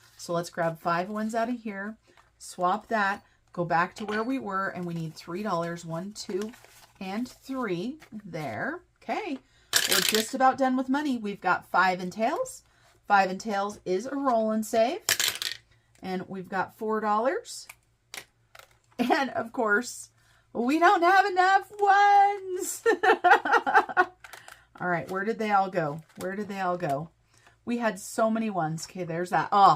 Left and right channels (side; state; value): both; identical; correlation 1.00